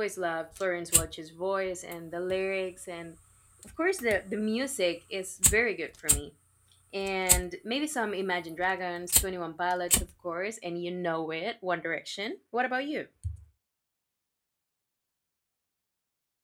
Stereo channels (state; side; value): identical; both; correlation 1.00